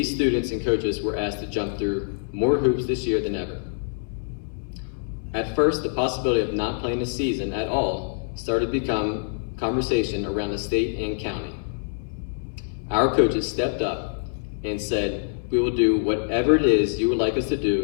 students and coaches were asked to jump through more hoops this year than ever. At first, the possibility of not playing the season at all started to become conversation around the state and county. Our coaches stepped up and said, we will do whatever it is you would like us to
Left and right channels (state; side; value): silent; right; 62 dB below the other